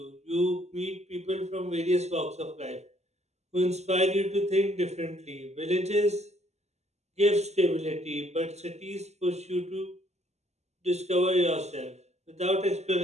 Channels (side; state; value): left; late; 0.32 ms